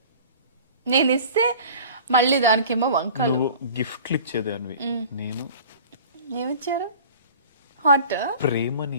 నేను ఇస్తే మళ్ళీ దానికేమో వంకలు. నువ్వు గిఫ్ట్లు ఇచ్చేదానివి, నేను ఏమిచ్చారు? హాట్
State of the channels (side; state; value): both; inverted; correlation -0.43